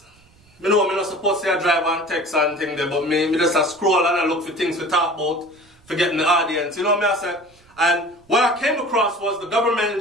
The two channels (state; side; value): noise; right; rumble, 30 dB below the sound